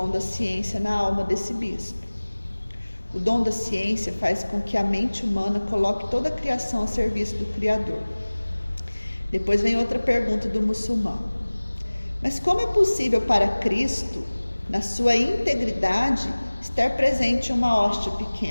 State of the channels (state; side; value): inverted; both; correlation -1.00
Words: da ciência na alma desse bispo. O dom da ciência faz com que a mente humana coloque toda a criação a serviço do Criador. Depois vem outra pergunta do muçulmano. Mas como é possível para Cristo, na sua integridade, estar presente em uma hóstia